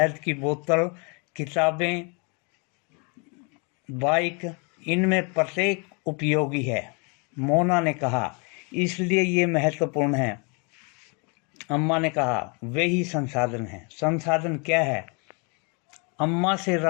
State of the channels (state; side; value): quieter; right; 33.6 dB